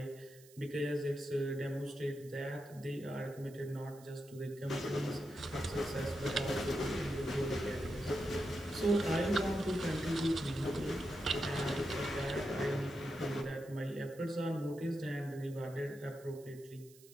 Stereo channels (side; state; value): right; noise; hiss, 23 dB below the sound